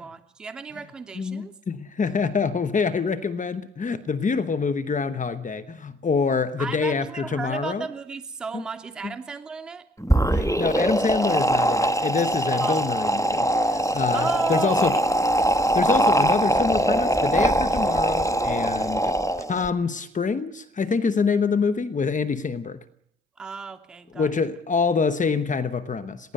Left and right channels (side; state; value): both; normal; correlation 0.62